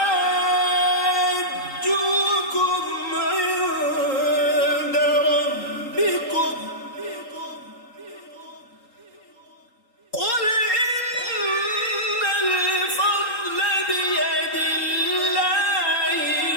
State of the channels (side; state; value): right; late; 3.8 ms